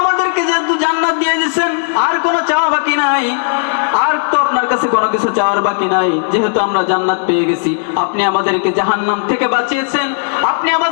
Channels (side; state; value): right; silent; digital silence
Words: আমাদেরকে যেহেতু জান্নাত দিয়ে দিয়েছেন আর কোনো চাওয়া বাকি নাই, আর তো আপনার কাছে কোনো কিছু চাওয়ার বাকি নাই, যেহেতু আমরা জান্নাত পেয়ে গেছি। আপনি আমাদেরকে জাহান্নাম থেকে বাঁচিয়েছেন, আপনি